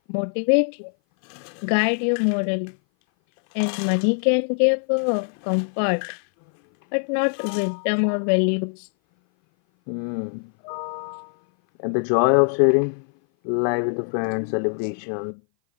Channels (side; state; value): right; silent; 58 dB below the other